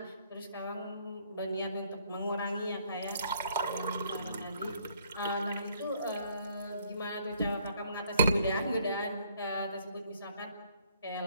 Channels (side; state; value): both; inverted; correlation -0.65